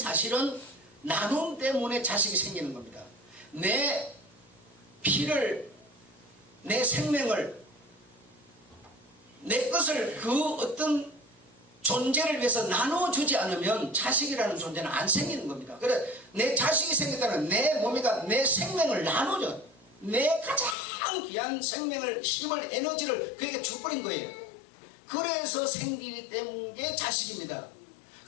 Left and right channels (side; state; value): right; drops out; at 20.8 s